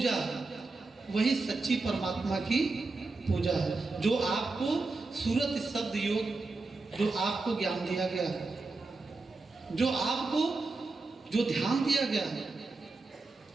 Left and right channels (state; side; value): quieter; left; 3.6 dB